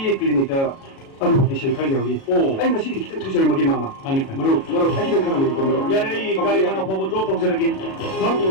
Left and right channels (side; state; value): right; late; 37 ms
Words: klinik ka. Ano di siya kanya uli. Ay, nasi kita tuloy magi mama. hanita Maro, ay kita kana magi ko maro. 야래 이 가리 하나 보고 줘 동서르긴